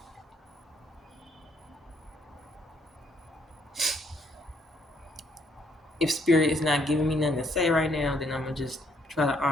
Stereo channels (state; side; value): normal; both; correlation 0.69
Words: if spirit is not giving me nothing to say right now, then I'm gonna just try to